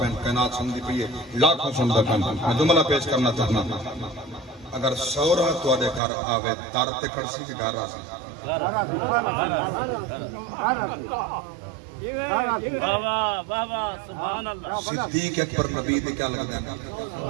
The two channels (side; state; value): left; drops out; at 6.0 s